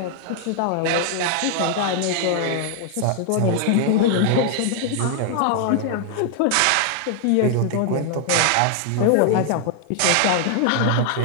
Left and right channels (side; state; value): both; different; correlation 0.00